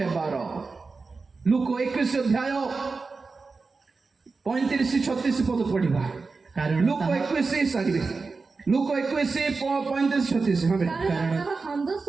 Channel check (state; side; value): quieter; left; 4.2 dB